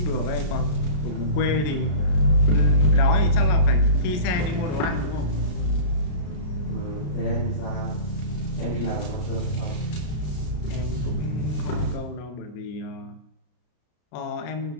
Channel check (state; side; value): late; right; 33 ms